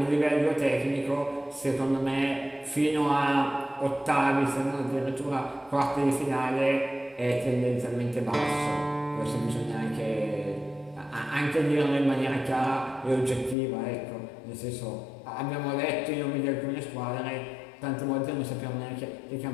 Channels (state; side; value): drops out; right; at 13.6 s